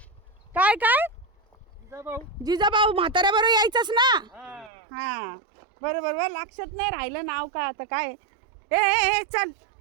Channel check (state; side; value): drops out; left; at 4.7 s